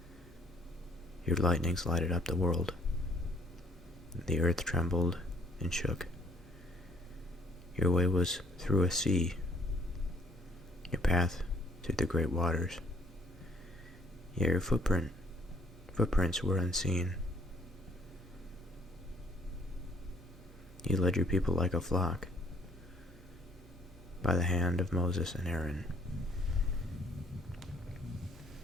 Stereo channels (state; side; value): normal; both; correlation 0.62